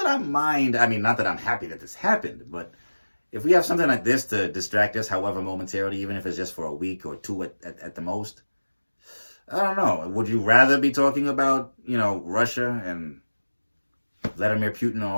I mind. I mean, not that I'm happy that this happened, but if we have something like this to distract us, however momentarily, even if it's just for a week or two at the most, I don't know. Would you rather be talking about, you know, Russia and Vladimir Putin and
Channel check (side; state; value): both; inverted; correlation -1.00